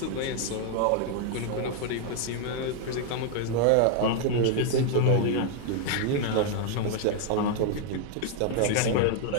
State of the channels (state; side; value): different; both; correlation 0.00